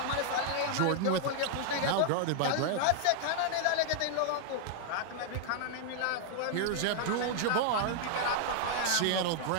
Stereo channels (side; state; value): both; different; correlation -0.01